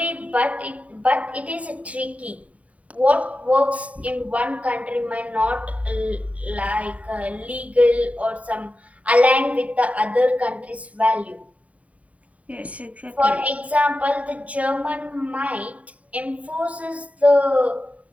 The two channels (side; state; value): left; late; 0.068 ms